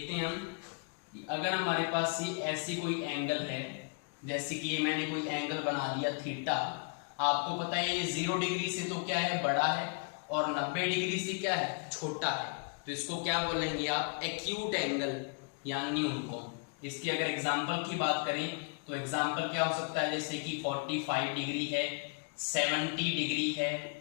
हैं हम, अगर हमारे पास ये ऐसी कोई एंगल है, जैसे कि ये मैंने कोई एंगल बना दिया थीटा। आपको पता है ये 0 डिग्री से तो क्या है, बड़ा है, और 90 डिग्री से क्या है, छोटा है। तो इसको क्या बोलेंगे आप? एक्यूट एंगल या न्यून कोण। इसकी अगर एग्जाम्पल की बात करें तो एग्जाम्पल क्या हो सकता है, जैसे कि 45 डिग्री है, 70 डिग्री है,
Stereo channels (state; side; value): quieter; right; 37.0 dB